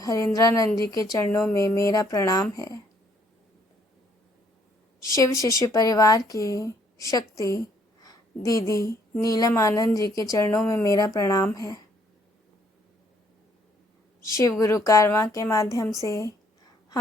जी के चरणों में मेरा प्रणाम है। शिव शिष्य परिवार की शक्ति दीदी नीलम आनंद जी के चरणों में मेरा प्रणाम है। शिव गुरु कारवां के माध्यम से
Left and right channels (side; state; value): both; normal; correlation 0.66